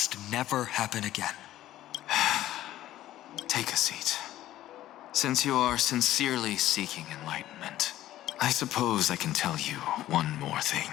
never happen again. Take a seat. Since you are sincerely seeking enlightenment, I suppose I can tell you one more thing.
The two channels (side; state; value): right; quieter; 14.0 dB